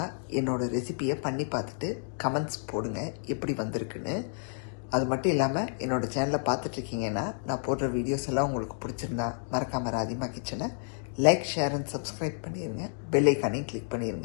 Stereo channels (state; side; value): silent; right; digital silence